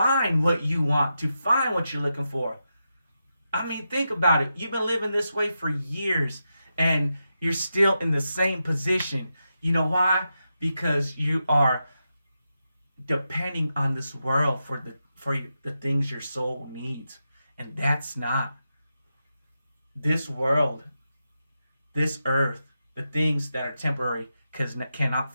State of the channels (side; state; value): both; inverted; correlation -0.87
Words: what you want, to find what you're looking for. I mean, think about it. You've been living this way for years and you're still in the same position. You know why? Because you are depending on this world for the things your soul needs. And that's not this world, this earth, the things that are temporary cannot